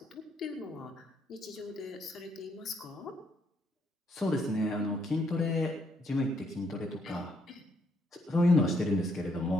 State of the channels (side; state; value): both; normal; correlation 0.72